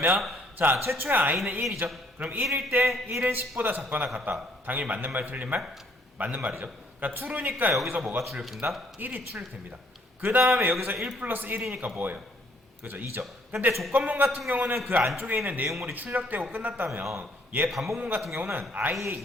자, 최초의 i는 1이죠. 그럼 1일 때 1은 10보다 작거나 같다. 당연히 맞는 말 틀린 말? 맞는 말이죠. 그러니까 true니까 여기서 뭐가 출력된다? 1이 출력됩니다. 그 다음에 여기서 1 플러스 1이니까 뭐예요? 그죠? 2죠. 근데 조건문 같은 경우는 그 안쪽에 있는 내용물이 출력되고 끝났다면 얘 반복문 같은 경우는 i에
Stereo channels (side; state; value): both; normal; correlation 0.64